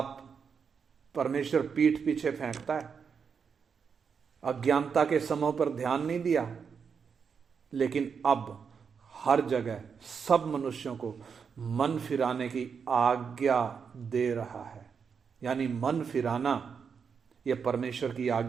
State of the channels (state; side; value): quieter; left; 6.3 dB